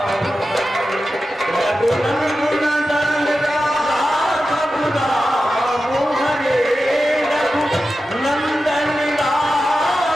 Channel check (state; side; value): normal; both; correlation 0.92